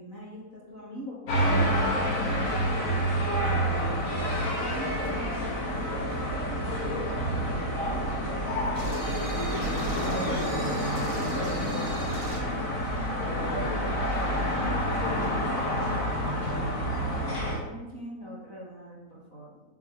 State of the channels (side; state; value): right; late; 3.9 ms